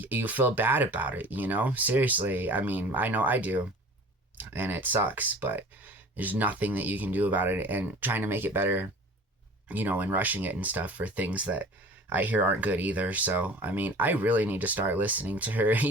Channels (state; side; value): normal; both; correlation 0.43